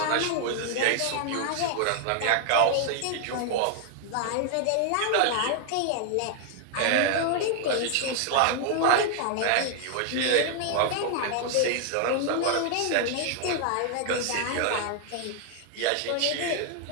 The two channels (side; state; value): both; different; correlation 0.00